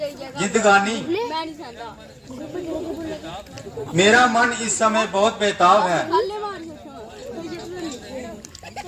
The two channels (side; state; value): both; identical; correlation 1.00